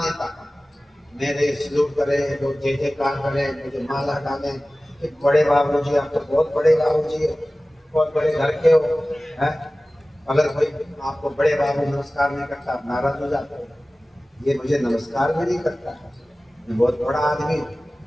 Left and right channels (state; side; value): normal; both; correlation 0.97